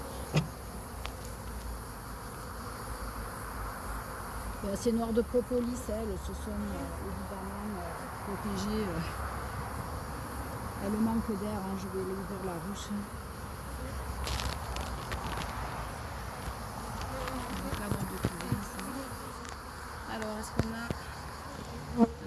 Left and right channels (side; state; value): both; identical; correlation 1.00